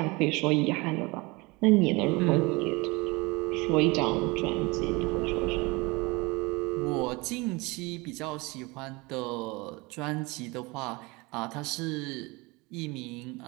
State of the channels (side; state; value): left; quieter; 24.9 dB